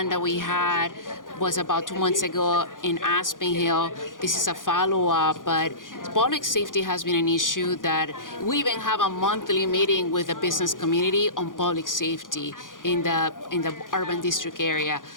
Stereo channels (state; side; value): late; right; 0.89 ms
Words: that we had was about 2 months ago in Aspen Hill. This is a follow-up, but public safety has been an issue that we even have a monthly meeting with the business community on public safety in the urban district area.